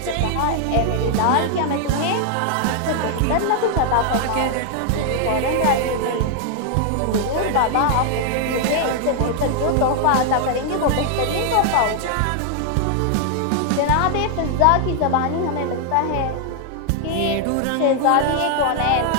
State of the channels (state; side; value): different; both; correlation 0.00